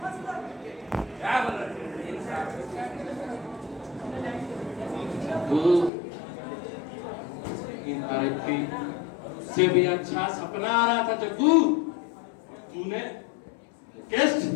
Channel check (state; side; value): drops out; right; at 5.9 s